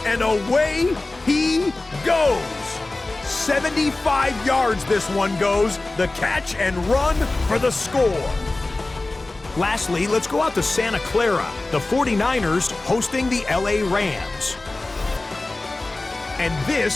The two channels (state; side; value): quieter; right; 3.0 dB